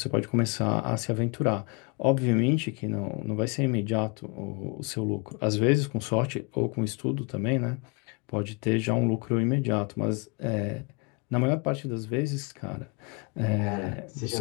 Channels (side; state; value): right; quieter; 30.4 dB